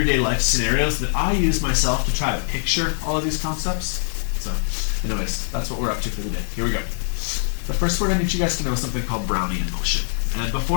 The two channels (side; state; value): right; silent; digital silence